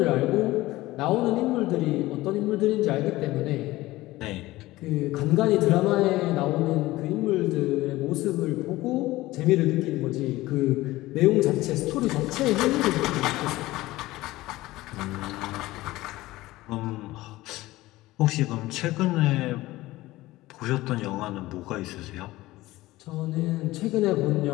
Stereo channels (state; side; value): quieter; right; 18.1 dB